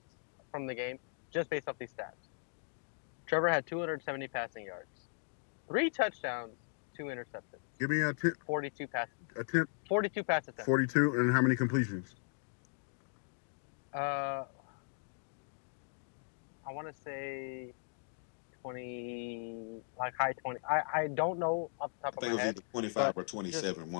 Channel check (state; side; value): silent; right; digital silence